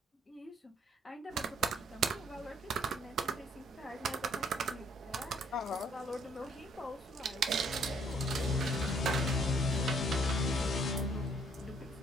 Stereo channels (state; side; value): normal; both; correlation 0.65